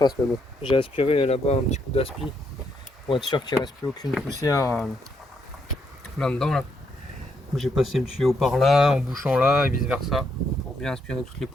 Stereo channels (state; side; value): normal; both; correlation 0.76